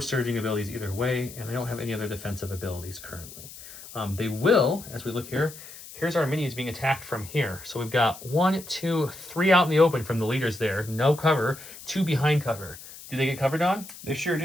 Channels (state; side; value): noise; left; hiss, 16 dB below the sound